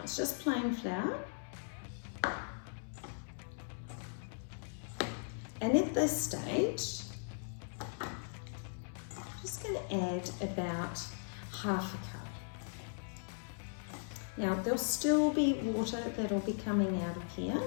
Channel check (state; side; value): silent; right; digital silence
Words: it's just plain flour. And at this stage, going to add about half a cup. Now there'll still be water that'll be coming out of here,